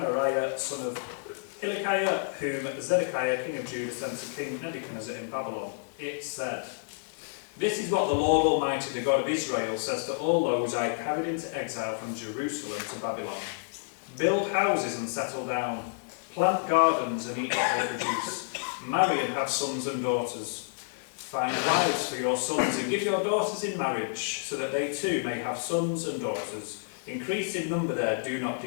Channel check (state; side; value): silent; right; digital silence